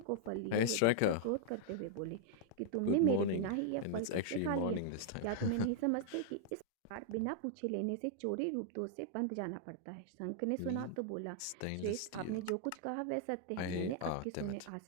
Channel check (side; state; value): both; different; correlation -0.01